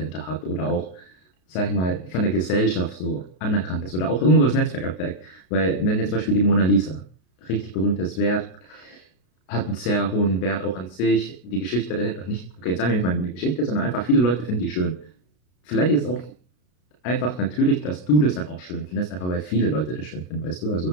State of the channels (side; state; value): right; late; 33 ms